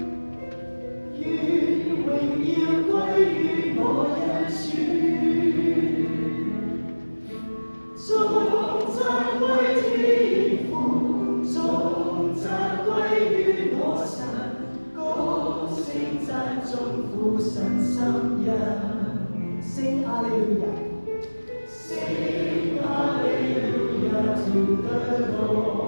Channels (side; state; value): both; inverted; correlation -1.00